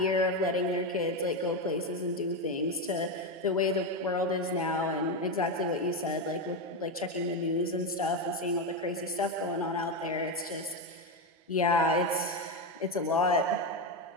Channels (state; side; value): normal; both; correlation 0.11